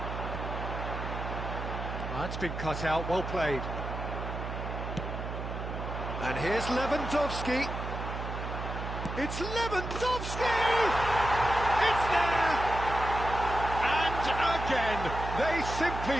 That's been cut out, well played. And here's Lewandowski. It's Lewandowski! It's there! And again, they simply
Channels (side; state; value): right; noise; hum, 6 dB below the sound